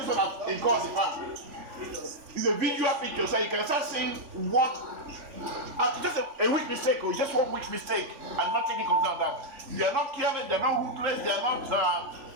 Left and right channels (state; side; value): late; left; 3.5 ms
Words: one has caused the farm. It's a visual picture, so you can start seeing what. Just a weak mistake, or just one weak mistake, and not taking control of that. They are not careless, they are not ruthless, they are not